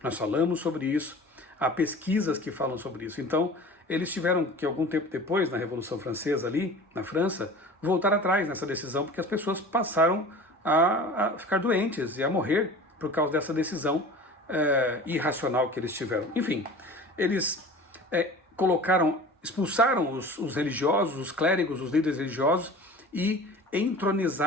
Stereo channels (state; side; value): normal; both; correlation 0.39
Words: Nós falamos sobre isso, há pesquisas que falam sobre isso. Então, eles tiveram que, algum tempo depois, na Revolução Francesa ali, na França, voltar atrás nessa decisão, porque as pessoas passaram a ficar doentes e a morrer por causa dessa decisão irracional que eles tiveram. Enfim, eles expulsaram os religiosos, os clérigos, os líderes religiosos e